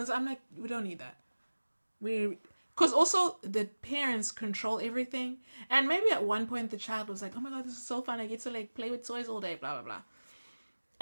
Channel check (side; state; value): both; inverted; correlation -1.00